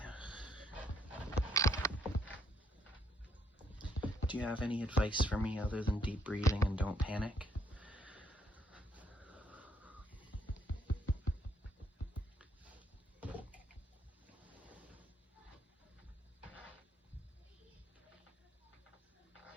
Do you have any advice for me other than deep breathing and don't panic?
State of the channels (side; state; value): both; normal; correlation 0.70